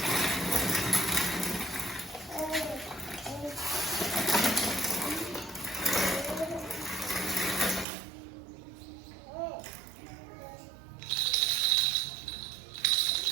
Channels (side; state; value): left; drops out; at 7.9 s